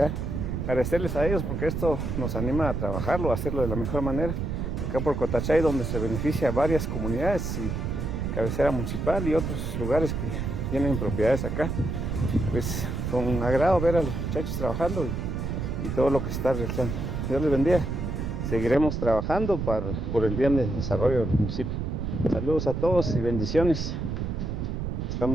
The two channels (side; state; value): right; noise; rumble, 2 dB below the sound